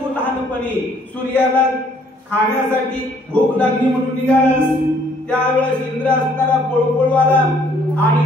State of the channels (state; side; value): normal; both; correlation 0.63